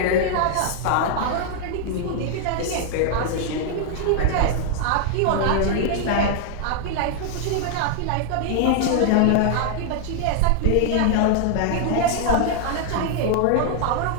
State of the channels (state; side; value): different; both; correlation 0.00